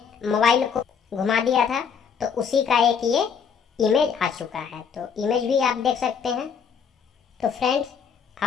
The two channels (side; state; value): right; quieter; 6.7 dB